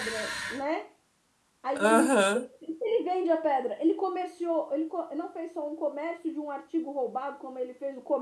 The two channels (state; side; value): identical; both; correlation 1.00